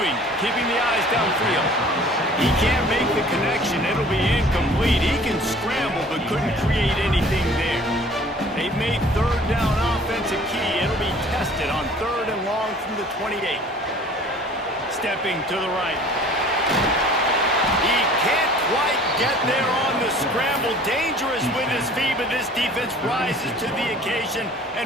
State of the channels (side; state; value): both; normal; correlation 0.50